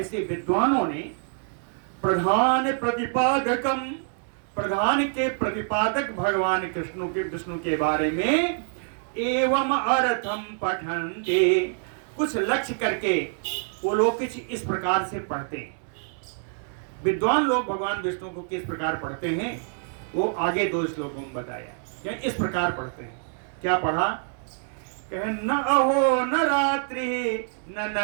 विद्वानों ने प्रधान प्रतिपादकम, प्रधान के प्रतिपादक भगवान कृष्ण के, विष्णु के बारे में एवं अर्थम पठन्ते, कुछ लक्ष्य करके वो लोग कुछ इस प्रकार से पढ़ते हैं। विद्वान लोग भगवान विष्णु को किस प्रकार पढ़ते हैं वो आगे 2 श्लोकों में बताया। क्या इस प्रकार पढ़ते हैं? क्या पढ़ा? कहे न अहो न रात्रि न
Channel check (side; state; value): left; silent; 61 dB below the other